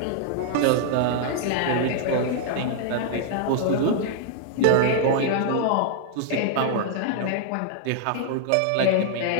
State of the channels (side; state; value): both; different; correlation -0.01